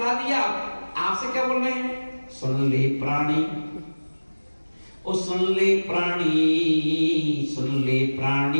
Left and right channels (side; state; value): both; inverted; correlation -1.00